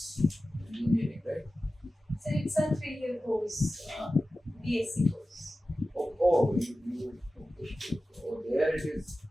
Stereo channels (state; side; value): normal; both; correlation 0.95